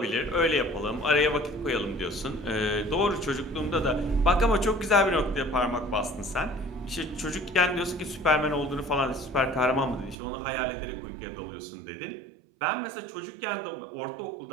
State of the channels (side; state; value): left; drops out; at 10.2 s